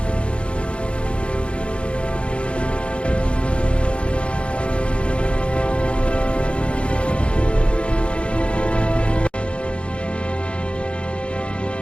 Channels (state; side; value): late; right; 0.059 ms